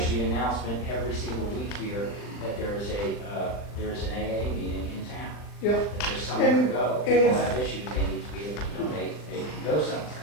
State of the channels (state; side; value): late; right; 39 ms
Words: the announcement every single week here that there is an AA meeting in town. Yeah. That there's somewhere to go. And People if- have issues, they need to be able to know they can go somewhere.